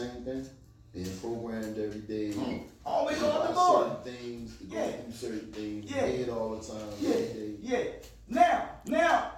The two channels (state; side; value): identical; both; correlation 1.00